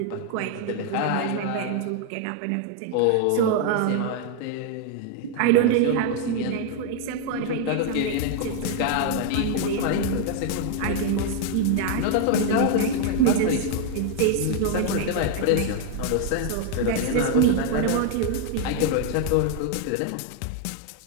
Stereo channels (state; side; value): different; both; correlation 0.00